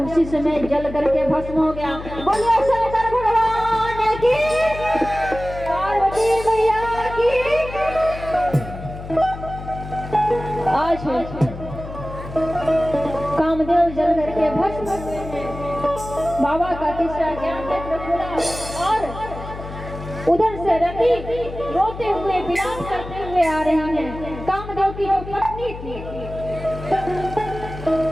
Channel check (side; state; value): left; noise; hum, 11 dB below the sound